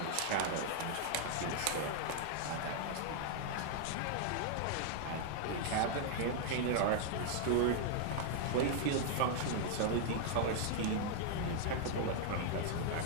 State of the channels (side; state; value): both; different; correlation 0.00